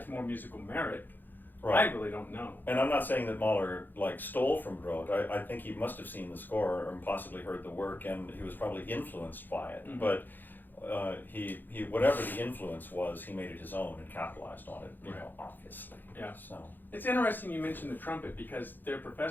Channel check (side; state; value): right; late; 0.089 ms